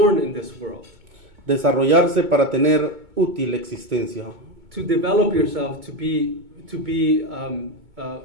in this world. Desarrollarse para tener útil existencia. To develop yourself to be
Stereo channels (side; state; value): left; late; 2.2 ms